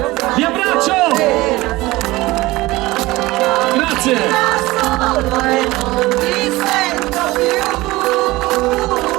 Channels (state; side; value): quieter; left; 19.7 dB